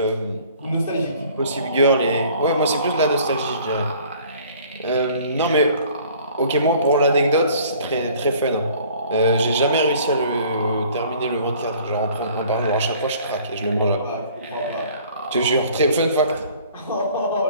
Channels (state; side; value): inverted; both; correlation -0.54